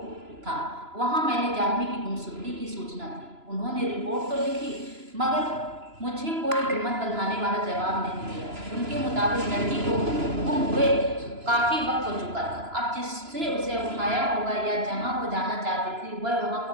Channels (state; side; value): late; left; 2.9 ms